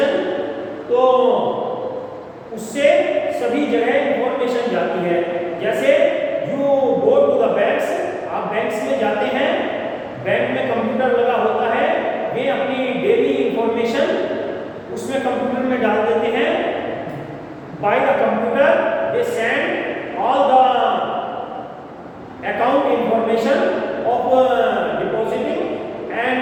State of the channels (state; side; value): identical; both; correlation 1.00